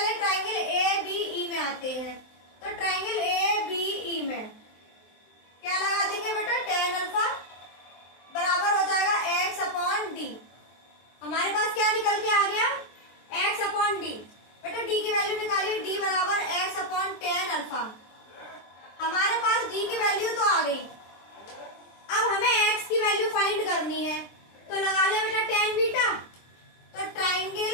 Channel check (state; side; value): late; right; 23 ms